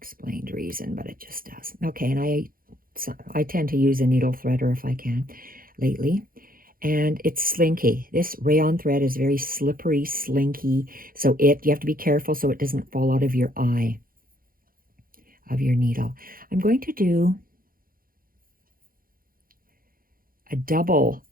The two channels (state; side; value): late; left; 0.42 ms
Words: reason, but it just does. Okay, and I tend to use a needle threader if I can lately. And it's slinky. This rayon thread is very slippery, slinky, so you have to be careful so it doesn't fall out of your eye of your needle. I'm going to do a double